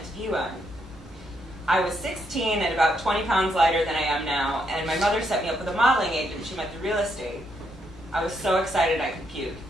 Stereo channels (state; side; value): normal; both; correlation 0.77